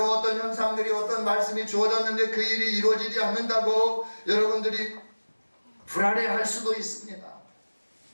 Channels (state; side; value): inverted; both; correlation -1.00